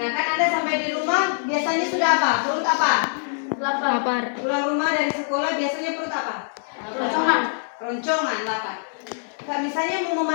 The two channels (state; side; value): silent; right; 62 dB below the other